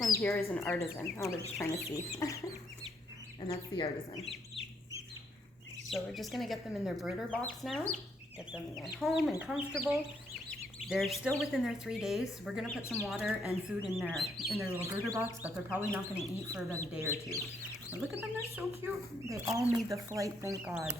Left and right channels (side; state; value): both; normal; correlation 0.72